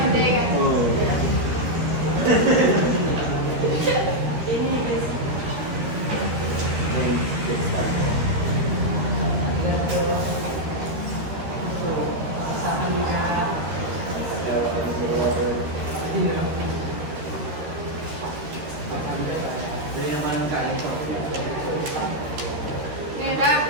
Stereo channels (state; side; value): late; left; 13 ms